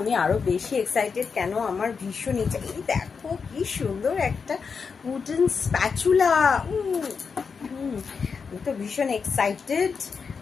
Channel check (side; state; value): right; quieter; 5.6 dB